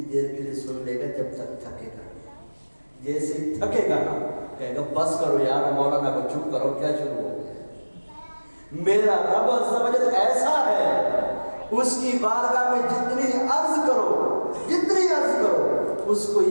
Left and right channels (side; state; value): both; inverted; correlation -1.00